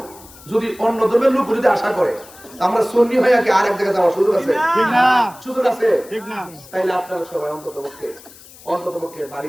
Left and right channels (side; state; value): left; noise; hiss, 21 dB below the sound